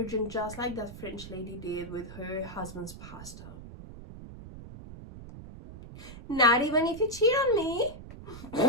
just like that French lady did with her husband's pasta. Not even if you cheat on me.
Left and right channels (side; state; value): right; noise; rumble, 14 dB below the sound